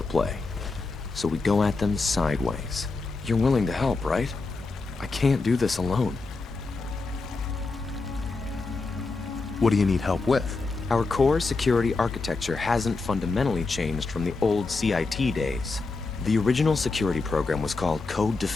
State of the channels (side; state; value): right; quieter; 3.8 dB